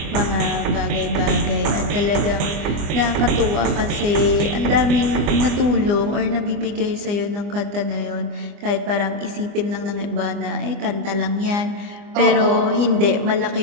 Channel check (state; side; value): late; left; 25 ms